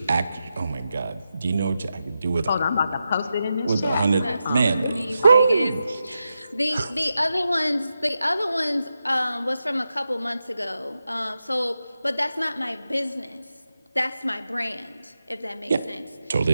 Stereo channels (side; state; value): both; inverted; correlation -0.89